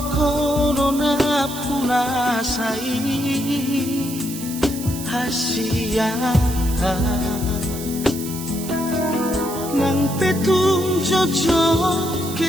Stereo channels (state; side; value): noise; right; hiss, 10 dB below the sound